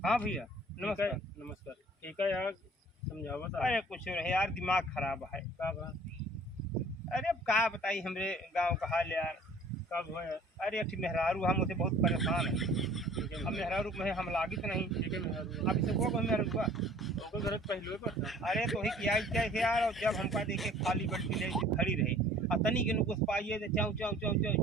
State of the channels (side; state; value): both; normal; correlation 0.51